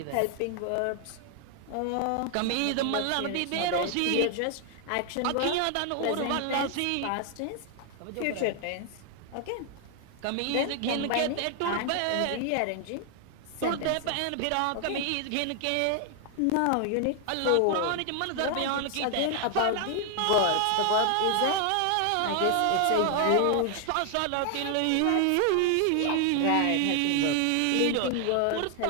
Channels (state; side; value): different; both; correlation 0.00